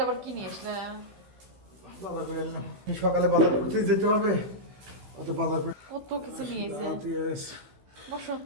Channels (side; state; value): left; late; 15 ms